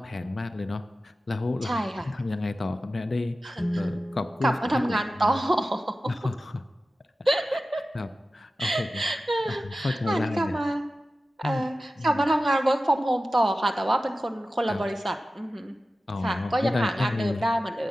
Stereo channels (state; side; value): normal; both; correlation 0.94